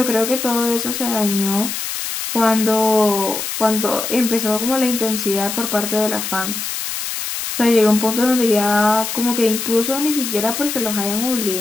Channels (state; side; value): noise; left; hiss, 5 dB below the sound